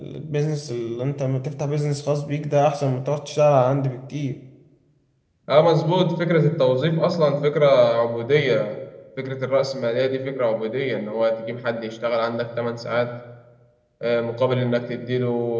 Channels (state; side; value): identical; both; correlation 1.00